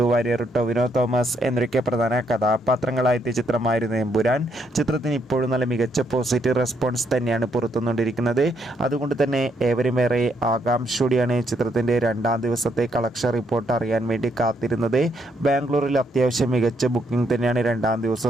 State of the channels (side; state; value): both; normal; correlation 0.74